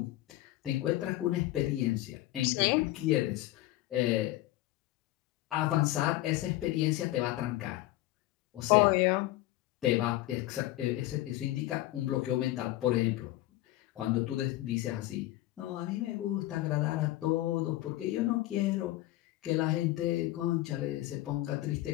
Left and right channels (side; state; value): right; quieter; 16.3 dB